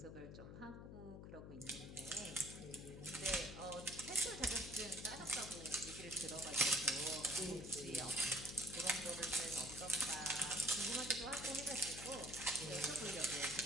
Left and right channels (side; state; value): left; noise; hum, 10 dB below the sound